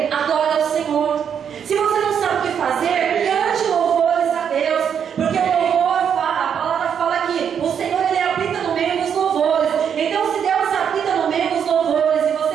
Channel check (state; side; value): quieter; left; 7.9 dB